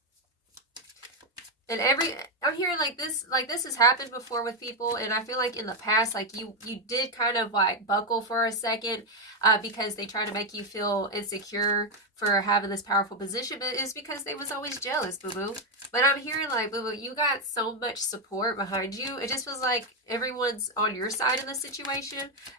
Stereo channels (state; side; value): normal; both; correlation 0.05